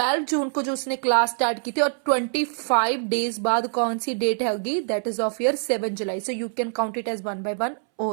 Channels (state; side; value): silent; left; 62 dB below the other